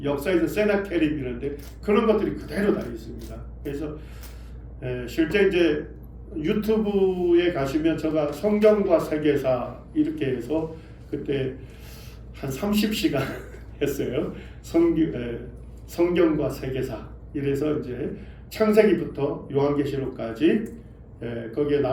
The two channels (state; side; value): identical; both; correlation 1.00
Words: 역사에서 세나케립이라는데 그런 것들이 그대로 다 있습니다. 그래서 실제 이제 유튜브에 가시면 제가 성경과 세계사 이렇게 해서 그때 한 30시간 했어요. 성경과 세계사 이래서 이제 창세기부터 요한계시록까지 거기에